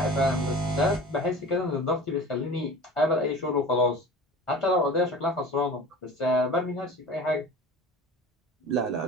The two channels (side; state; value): both; normal; correlation 0.38